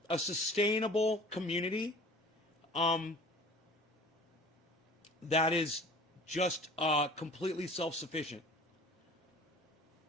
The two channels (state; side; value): normal; both; correlation 0.45